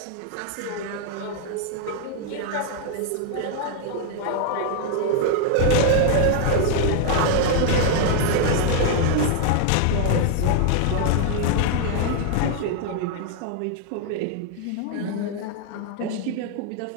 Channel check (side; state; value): both; different; correlation 0.00